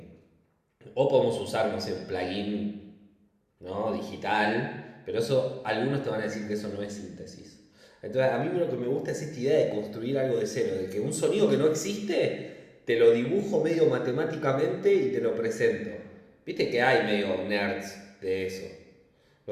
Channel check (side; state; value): both; identical; correlation 1.00